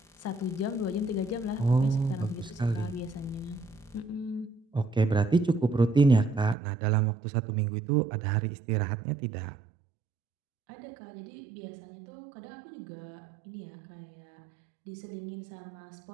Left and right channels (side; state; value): left; drops out; at 6.6 s